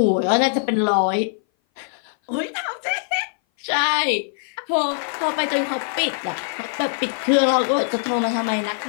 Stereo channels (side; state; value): right; silent; 58 dB below the other